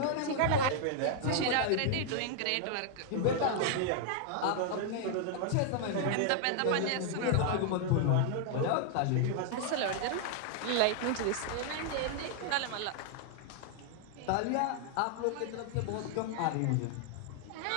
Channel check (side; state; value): both; different; correlation 0.00